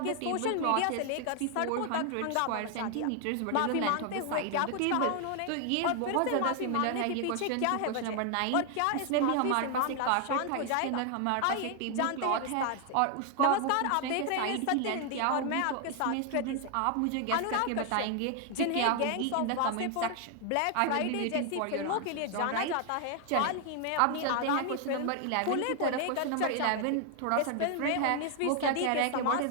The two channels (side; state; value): both; different; correlation 0.00